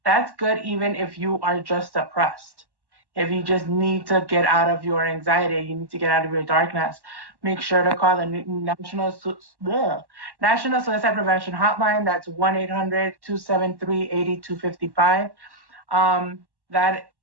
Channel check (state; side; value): late; left; 1.1 ms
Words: That's good even if you are just depressed. If you just need to get out of your anxiety, you need to get out of your darkness, make sure to call the National Suicide Prevention Hotline. That's 1-800-273-8255. That